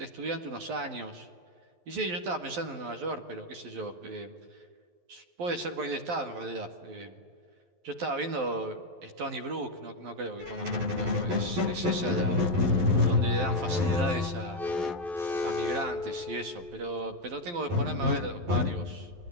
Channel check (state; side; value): late; left; 11 ms